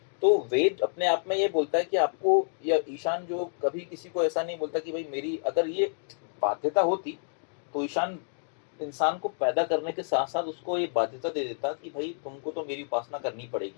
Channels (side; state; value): right; silent; digital silence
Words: तो वेद अपने आप में ये बोलता है कि आपको, या ईशान जो कभी किसी को ऐसा नहीं बोलता कि भाई मेरी अगर ये बाध्यता होती तो ईशान इंसान को पैदा करने के साथ साथ उसको ये बाध्यता दे देता कि भाई तुमको तो मेरी उपासना करनी